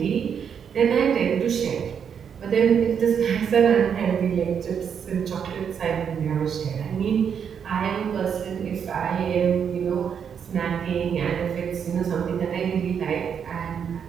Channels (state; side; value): quieter; left; 7.5 dB